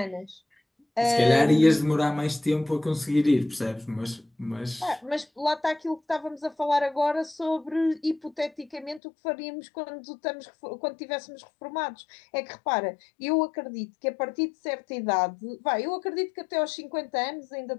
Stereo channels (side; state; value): right; drops out; at 9.0 s